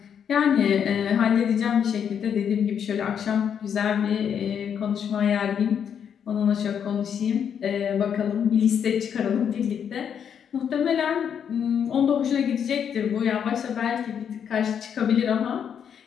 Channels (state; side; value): quieter; right; 8.0 dB